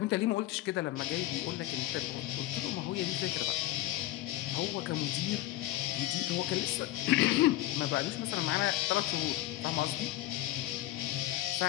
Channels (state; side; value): quieter; right; 15.9 dB